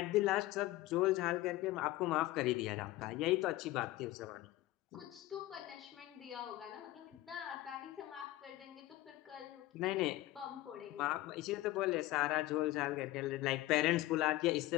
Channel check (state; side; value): quieter; right; 17.0 dB